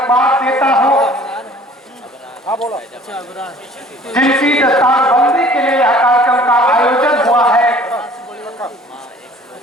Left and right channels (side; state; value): both; normal; correlation 0.51